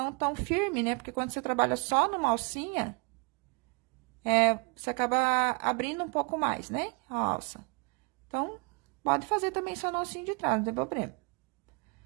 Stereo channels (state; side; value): quieter; left; 33.6 dB